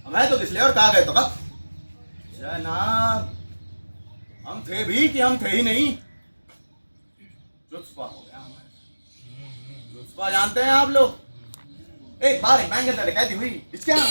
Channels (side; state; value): both; inverted; correlation -1.00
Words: मैं तो किस लिए और कहा गए तो कब जनाब, हम थे भी कि हम थे ही नहीं। जुत्सपा हो गया हमारे। जुत्सपा जानते हैं आप लोग? एक बार एक बैंक के अंदर डकैती हुई।